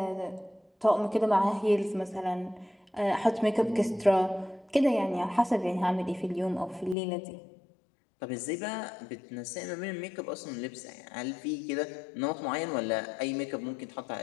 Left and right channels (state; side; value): drops out; right; at 7.0 s